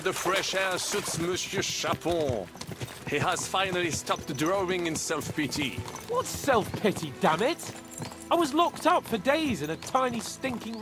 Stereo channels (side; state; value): both; identical; correlation 1.00